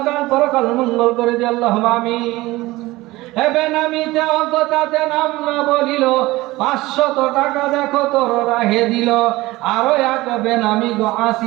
পরকাল মঙ্গল করে দিও। আল্লাহুম্মা আমিন। এবে নামিতে অজ্ঞতাতে নাম না বলিল, 500 টাকা দেখো তোর রাহে দিল। আরো এক বেনামি গো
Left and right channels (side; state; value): left; quieter; 19.3 dB